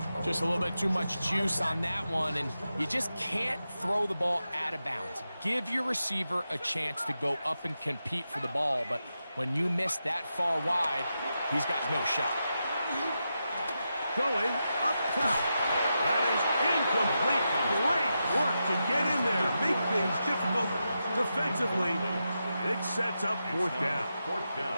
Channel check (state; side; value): inverted; both; correlation -0.88